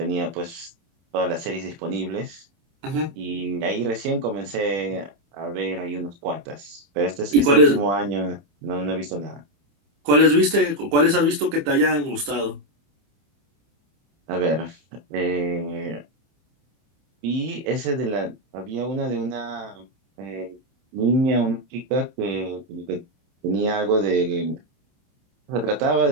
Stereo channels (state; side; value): late; left; 26 ms